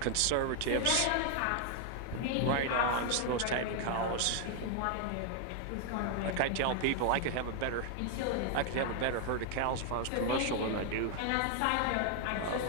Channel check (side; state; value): both; different; correlation 0.00